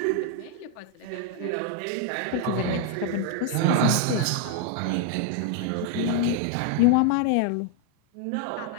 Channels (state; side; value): different; both; correlation 0.00